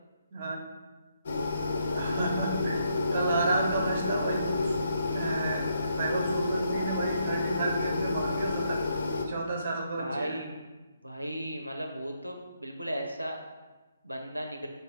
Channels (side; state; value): both; inverted; correlation -0.75